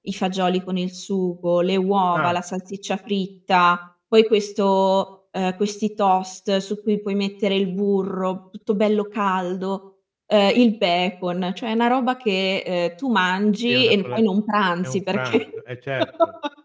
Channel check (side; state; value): both; identical; correlation 1.00